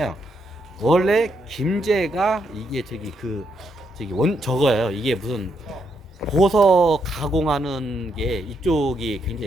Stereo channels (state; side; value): normal; both; correlation 0.78